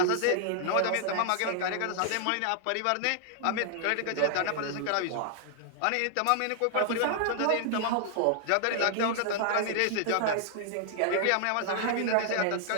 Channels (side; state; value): both; different; correlation 0.00